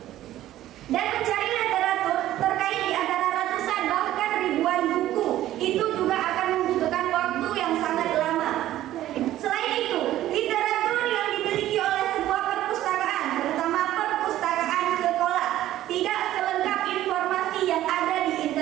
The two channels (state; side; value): quieter; left; 13.7 dB